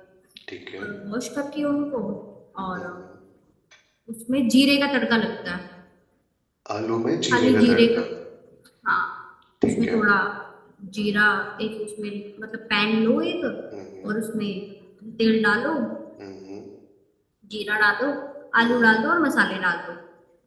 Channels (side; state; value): both; identical; correlation 1.00